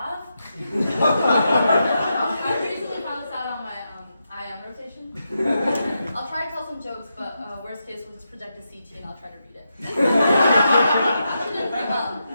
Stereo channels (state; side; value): inverted; both; correlation -0.85